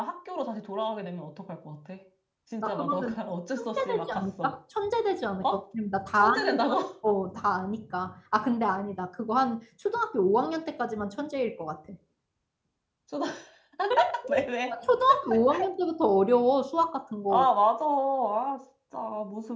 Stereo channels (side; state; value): both; identical; correlation 1.00